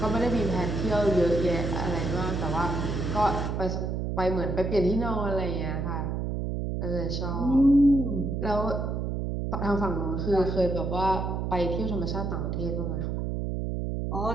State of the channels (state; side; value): noise; right; hum, 2 dB below the sound